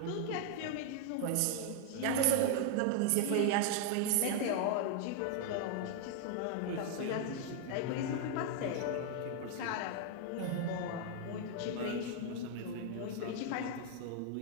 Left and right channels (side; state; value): both; different; correlation 0.00